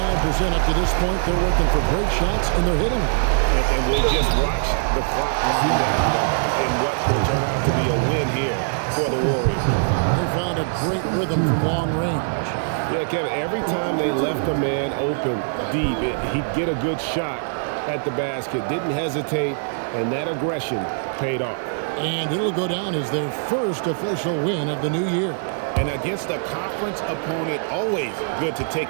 up to this point. They're working for great shots, and they're hitting them. And we'll just watch the clock wind down, guys, in what will turn out to be a win here for the Warriors. They found a great rhythm from long range. Yeah, Kevin, every time they left a man open deep, he'd get a good shot at the basket. Didn't hesitate, and that aggression paid off. And it'll go down as their first official win of the new year. And against a conference opponent, always good to take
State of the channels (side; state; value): left; silent; 61 dB below the other